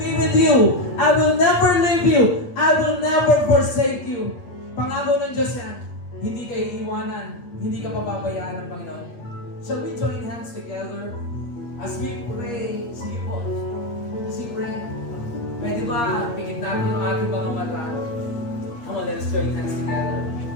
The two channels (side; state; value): right; late; 8.5 ms